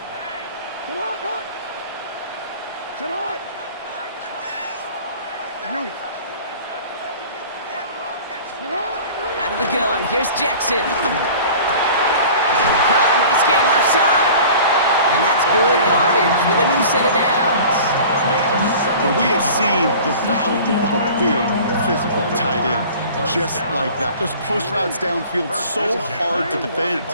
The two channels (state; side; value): inverted; both; correlation -0.43